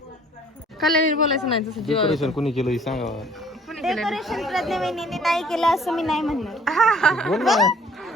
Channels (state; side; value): normal; both; correlation 0.56